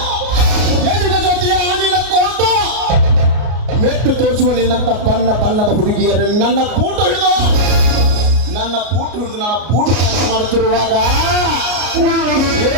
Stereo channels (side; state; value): left; late; 33 ms